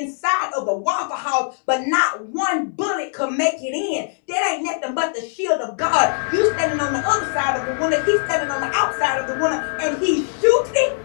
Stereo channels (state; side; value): silent; right; digital silence